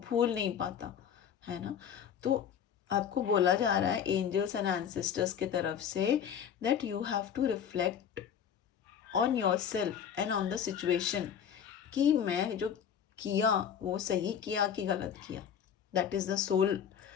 भूल नहीं पाता, है ना? तो आपको बोला जा रहा है एंजल्स एंड एंसेस्टर्स की तरफ से that you have to reflect on your self and on the situation, कि मैं जो किया वो सही किया कि गलत किया। That is the soul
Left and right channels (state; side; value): quieter; right; 8.3 dB